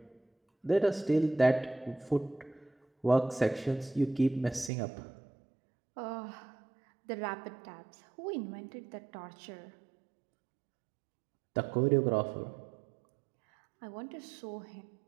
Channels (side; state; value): left; drops out; at 4.7 s